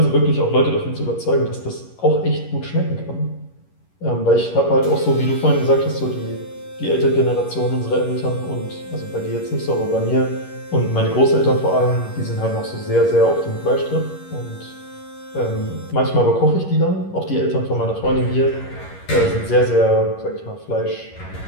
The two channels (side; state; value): right; late; 11 ms